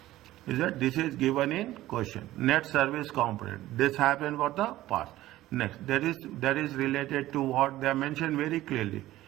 Is that this is given in question. Net service component. This happened for the past. Next, that is related to what they mentioned very clearly.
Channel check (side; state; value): left; quieter; 15.6 dB